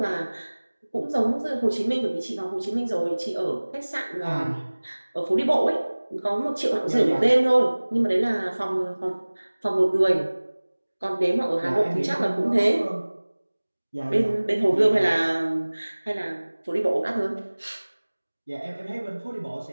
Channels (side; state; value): both; inverted; correlation -1.00